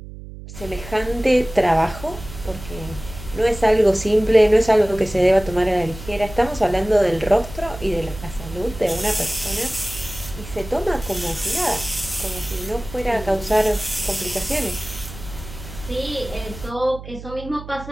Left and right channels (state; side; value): noise; right; hum, 13 dB below the sound